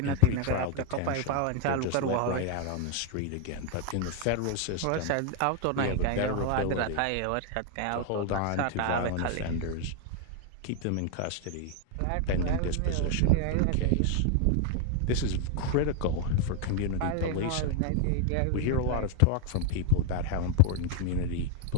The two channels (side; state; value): both; different; correlation 0.00